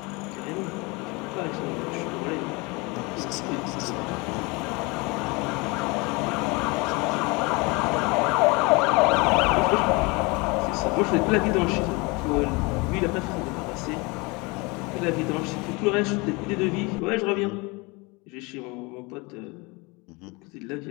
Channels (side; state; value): right; quieter; 26.8 dB